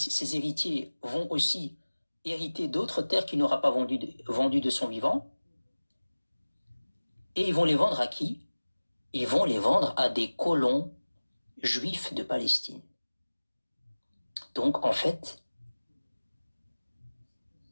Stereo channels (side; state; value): both; inverted; correlation -1.00